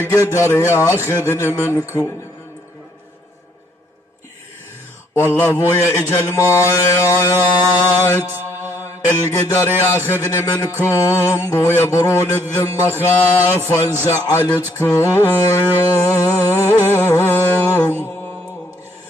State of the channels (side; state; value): both; normal; correlation 0.68